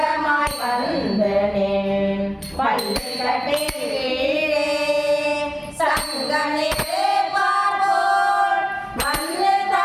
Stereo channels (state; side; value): identical; both; correlation 1.00